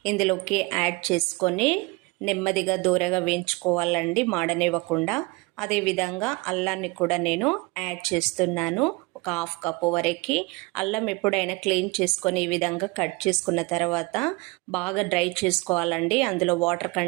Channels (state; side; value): quieter; left; 24.8 dB